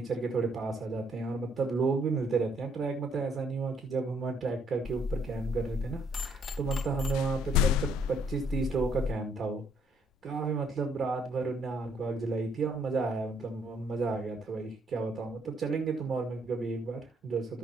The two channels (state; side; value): normal; both; correlation 0.68